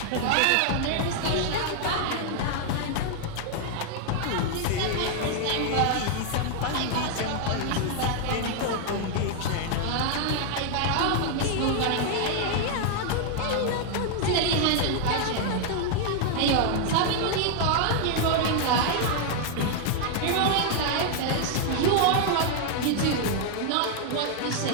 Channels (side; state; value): both; different; correlation 0.00